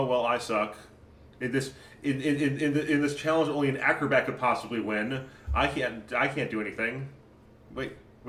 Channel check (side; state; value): both; identical; correlation 1.00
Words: well, I suck. In this in this challenge, only an acrobat could possibly win. I can't do anything. Wait